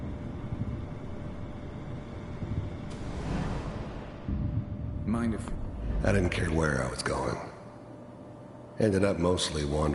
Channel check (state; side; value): identical; both; correlation 1.00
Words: Mind if... I didn't care where I was going. Ended up mostly